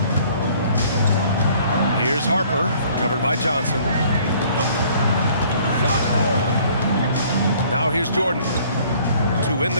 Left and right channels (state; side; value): inverted; both; correlation -0.57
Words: Here's Harper, covered by Johnson. Now here's Jordan to win